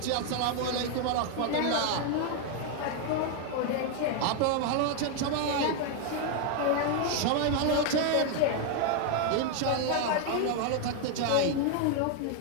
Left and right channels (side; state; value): both; different; correlation 0.00